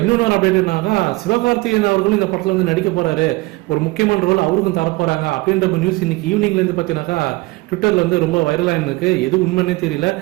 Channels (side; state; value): left; quieter; 22.3 dB